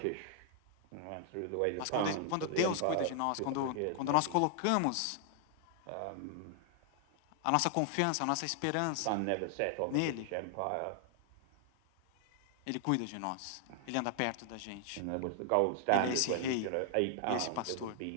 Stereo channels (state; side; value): different; both; correlation 0.00